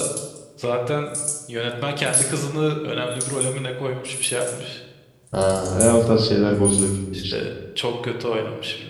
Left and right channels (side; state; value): both; identical; correlation 1.00